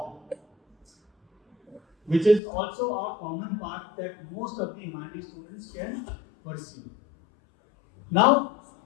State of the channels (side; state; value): right; drops out; at 2.4 s